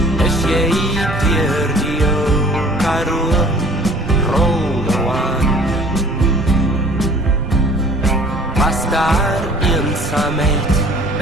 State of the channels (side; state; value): both; normal; correlation 0.50